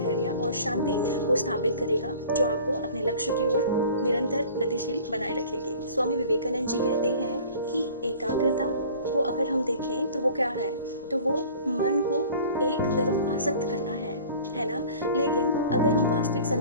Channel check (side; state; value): both; inverted; correlation -0.45